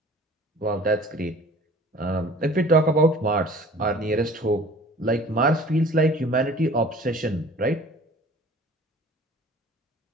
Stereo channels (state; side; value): normal; both; correlation 0.47